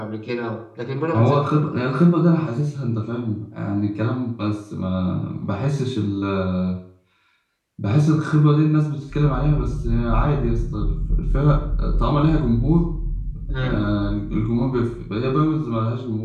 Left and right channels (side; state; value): both; identical; correlation 1.00